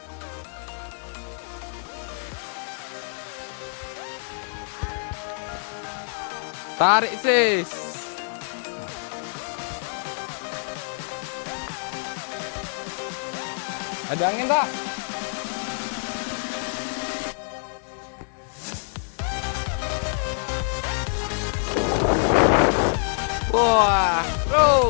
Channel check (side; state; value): right; silent; digital silence